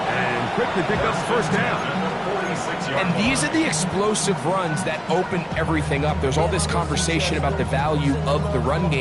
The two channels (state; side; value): identical; both; correlation 1.00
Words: and quickly pick up the first down. And these are the explosive runs that open everything up. There's all this conversation about the value of the run